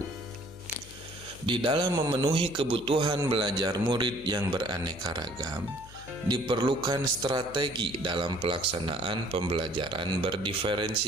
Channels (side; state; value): left; noise; hum, 19 dB below the sound